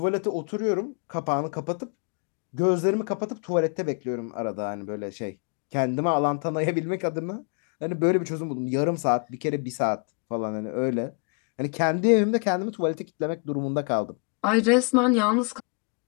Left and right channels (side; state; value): right; quieter; 36.4 dB